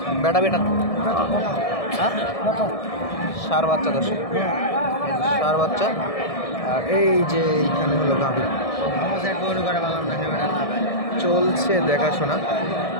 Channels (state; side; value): late; right; 1.6 ms